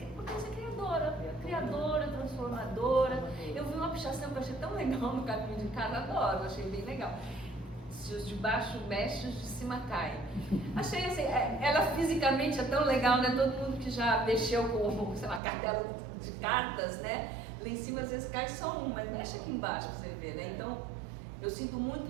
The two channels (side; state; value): left; drops out; at 15.4 s